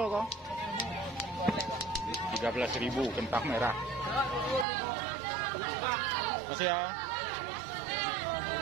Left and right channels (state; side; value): drops out; left; at 4.7 s